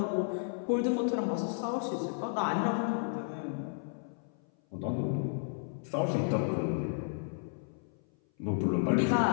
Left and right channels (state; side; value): silent; right; 56 dB below the other